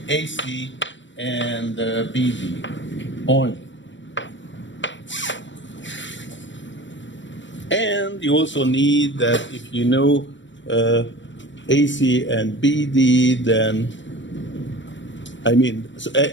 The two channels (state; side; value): late; right; 0.54 ms